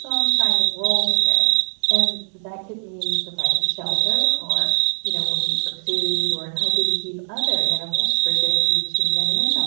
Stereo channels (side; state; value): left; silent; digital silence